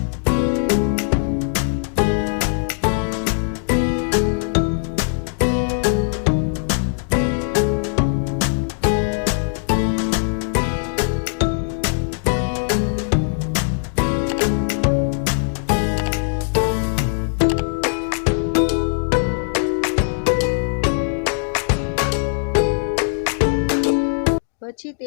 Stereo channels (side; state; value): right; silent; digital silence